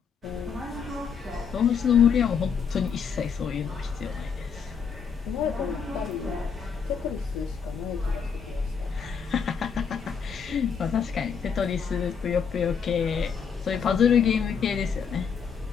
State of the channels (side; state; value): right; quieter; 6.6 dB